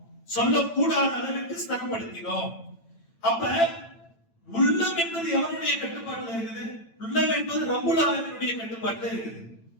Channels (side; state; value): right; late; 8.9 ms